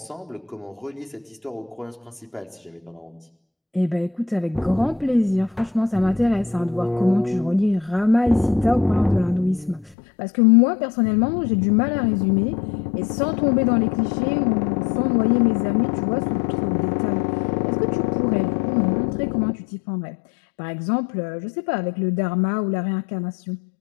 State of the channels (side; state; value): right; drops out; at 10.0 s